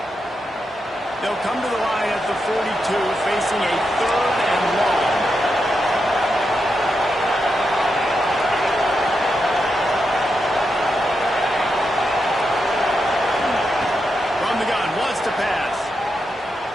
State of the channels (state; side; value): normal; both; correlation 0.85